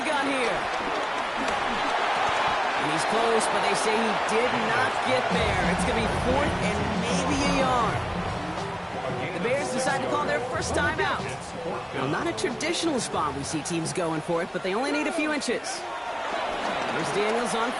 gun here. And he's close, but they say he did not get there. It's going to be 4th and maybe a yard. The Bears decide to call their first time out. Well, not a traditional spot we see teams going for it, but they only need a few inches. Here's Daniels on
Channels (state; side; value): identical; both; correlation 1.00